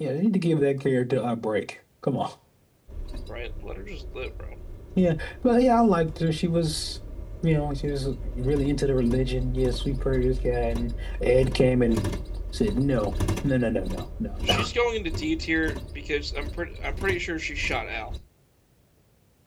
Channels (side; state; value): both; identical; correlation 1.00